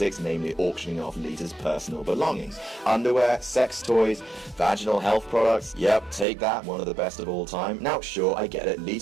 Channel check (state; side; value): drops out; left; at 6.2 s